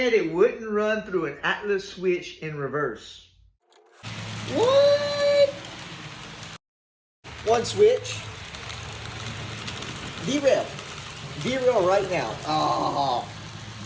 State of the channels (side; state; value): both; identical; correlation 1.00